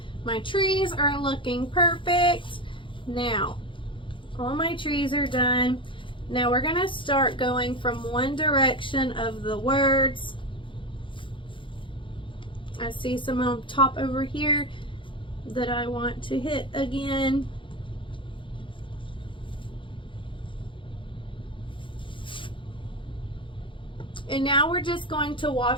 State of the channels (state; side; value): late; right; 0.24 ms